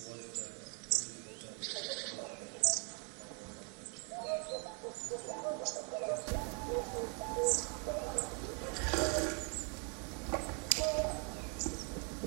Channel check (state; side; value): quieter; left; 37.8 dB